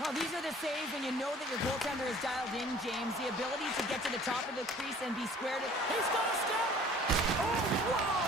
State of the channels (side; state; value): both; normal; correlation 0.51